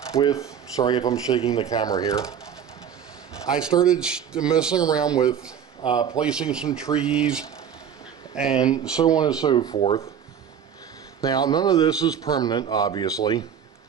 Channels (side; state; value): left; quieter; 8.3 dB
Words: with, sorry if I'm shaking the camera here. I started messing around with placing some trees and so on and so forth. Now, none of this is permanent, obviously.